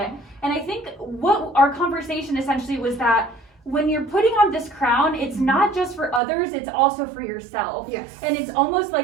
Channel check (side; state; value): left; drops out; at 6.2 s